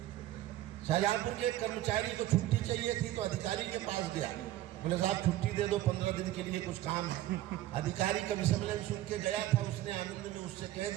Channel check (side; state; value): left; quieter; 14.5 dB